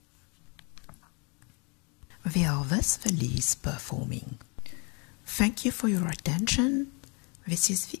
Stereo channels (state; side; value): quieter; right; 32.7 dB